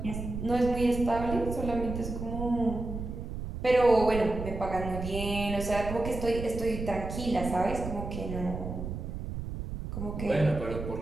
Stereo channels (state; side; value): noise; right; rumble, 6 dB below the sound